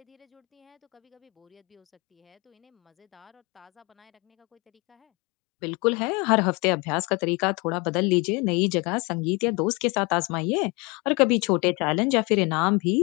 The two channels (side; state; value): right; quieter; 28.6 dB